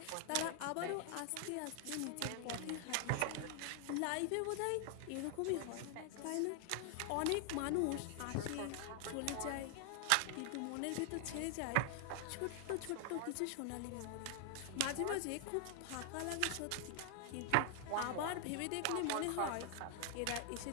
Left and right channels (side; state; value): both; different; correlation 0.00